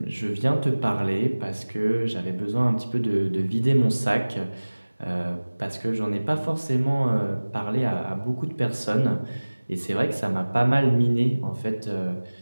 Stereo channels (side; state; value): both; inverted; correlation -1.00